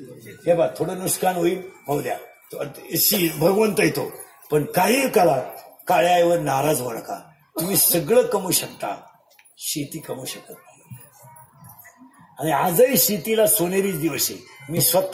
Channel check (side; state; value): both; identical; correlation 1.00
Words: हे बा थोडं नुकसान होईल होऊ द्या. भगवंत येतो. पण काही काळात काळ्या आईवर नाराज होऊ नका. तुम्ही सगळं कमवू शकता. शेती कमवू शकत नाही. आणि आजही शेतीला सोनेरीच दिवस आहे. मी